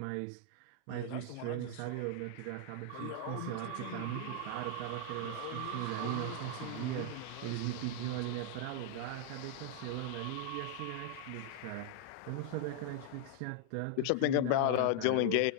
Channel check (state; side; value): different; both; correlation 0.00